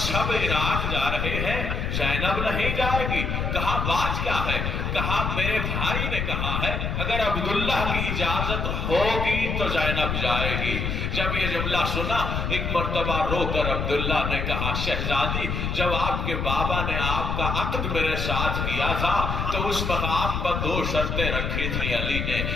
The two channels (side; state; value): left; noise; rumble, 1 dB below the sound